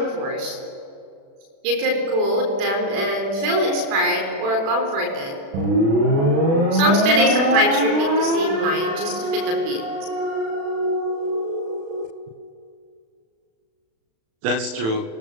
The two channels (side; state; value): left; late; 36 ms